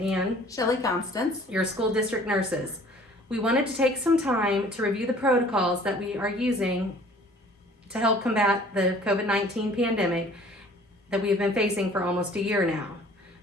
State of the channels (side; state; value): both; normal; correlation 0.52